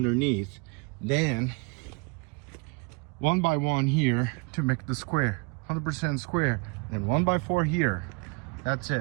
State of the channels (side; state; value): left; quieter; 31.3 dB